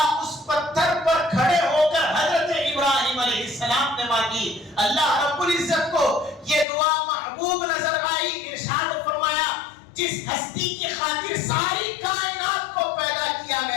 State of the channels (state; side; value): drops out; right; at 6.7 s